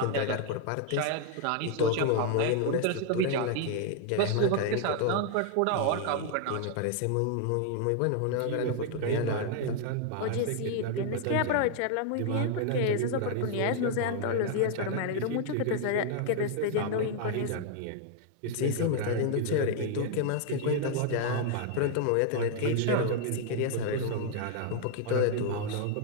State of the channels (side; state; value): both; different; correlation 0.00